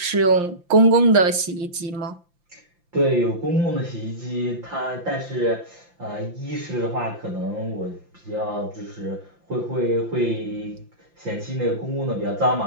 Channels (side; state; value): left; late; 5.8 ms